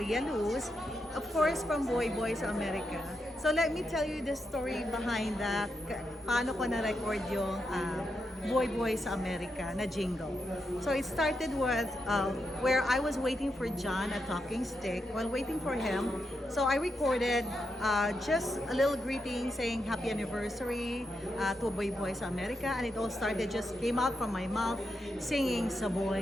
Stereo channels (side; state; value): both; normal; correlation 0.84